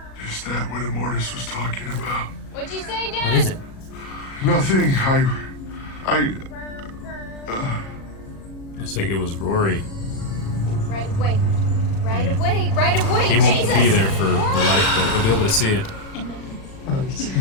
Is that what Immortus was talking about? What'd you say, Dad? What is it? Nothing. I think it was Rory. Right away. Right away. Right away. He won't Jesus. be there for life, but he'll be able to see it.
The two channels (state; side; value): late; right; 37 ms